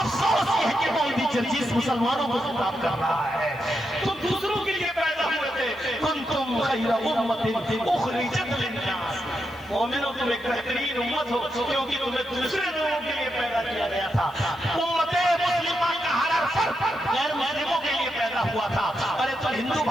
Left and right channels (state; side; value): noise; left; hiss, 28 dB below the sound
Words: افسوس یہ ہے کہ وہ بھی جرجیس مسلمانوں کو خطاب کر رہا ہے. تم دوسروں کے لیے پیدا ہوئے تھے. کنتم خیر امت اخرجت للناس. مومنوں تم ایک بہترین امت ہو کیونکہ تمہیں دوسرے لوگوں کے لیے پیدا کیا گیا تھا. امت مسلمہ کا ہر فرد غیر مسلموں کے لیے پیدا ہوا تھا. ارے تم ہندو